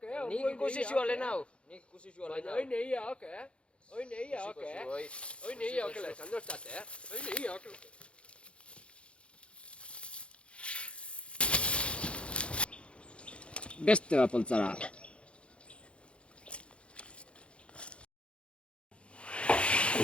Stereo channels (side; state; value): right; late; 0.059 ms